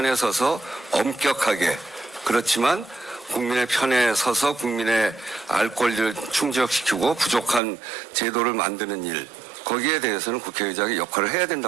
서서 엄격하게 그렇지만 국민의 편에 서서 국민의 알 권리를 충족시키고 부족한 제도를 만드는 일 거기에 대해서는 국회의장이 역할을 해야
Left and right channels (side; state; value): left; drops out; at 7.6 s